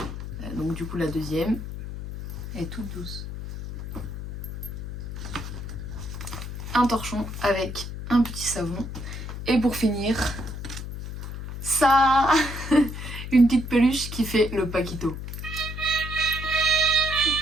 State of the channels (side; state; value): left; noise; hum, 8 dB below the sound